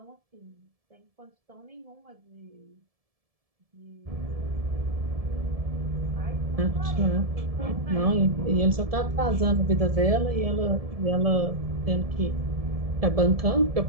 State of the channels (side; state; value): left; late; 1.7 ms